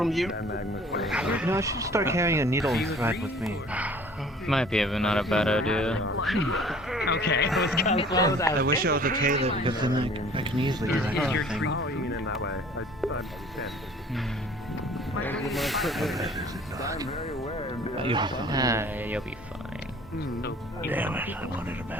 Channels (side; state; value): both; normal; correlation 0.51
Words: you. You know, I should start carrying a needle and thread with me. Might be not a bad idea. Okay, let's go. I wish I was a tailor because then I can easily do that kind of thing. You'll be fine. Damn it, I wanted a